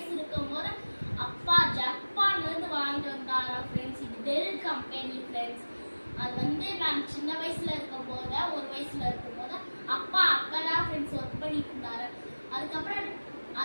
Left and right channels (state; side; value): inverted; both; correlation -1.00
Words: இருக்கும் போது அப்பா ஜப்பான்ல இருந்து வாங்கிட்டு வந்தாரா ஃப்ரெண்ட்ஸ். இது டெல் கம்பெனி ஃப்ரெண்ட்ஸ். அது வந்து நான் சின்ன வயசுல இருக்கும் போது 1 வயசுல இருக்கும் போது அப்பா அப்பதான் ஃப்ரெண்ட்ஸ் ஒர்க் பண்ணிட்டு இருந்தாரு. அதுக்கப்புறம்